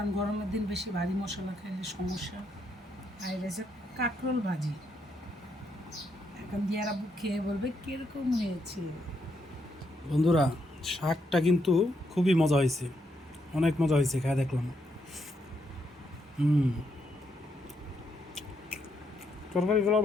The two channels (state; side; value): normal; both; correlation 0.77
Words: গরমের দিন বেশি ভারী মশলা খাইলে সমস্যা। আর এটা হচ্ছে কাঁকরোল ভাজি। এখন দিয়ারা বুক খেয়ে বলবে কিরকম হয়েছে। বন্ধুরা, শাকটা কিন্তু খুবই মজা হয়েছে, অনেক মজা হয়েছে, খাই দেখলাম। তরকারিগুলো